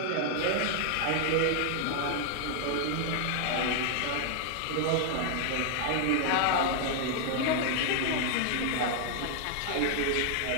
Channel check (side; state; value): both; different; correlation 0.00